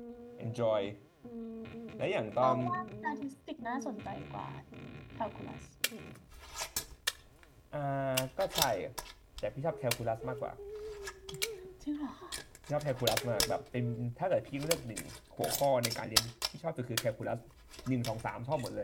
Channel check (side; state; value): both; identical; correlation 1.00